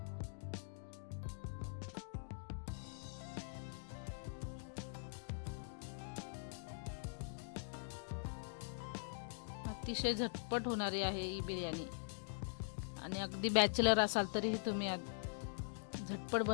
अतिशय झटपट होणारी आहे ही बिर्याणी आणि अगदी बॅचलर असाल तरीही तुम्ही झटपट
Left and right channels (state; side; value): silent; right; digital silence